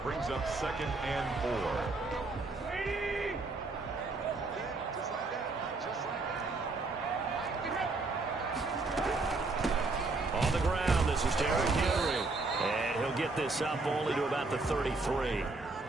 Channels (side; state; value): left; quieter; 3.5 dB